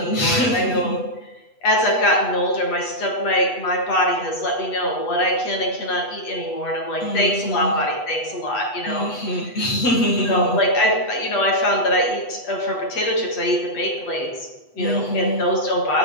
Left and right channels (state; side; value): late; right; 8.1 ms